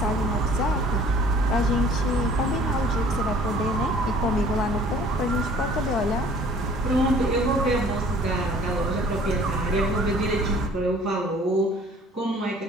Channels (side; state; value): both; normal; correlation 0.53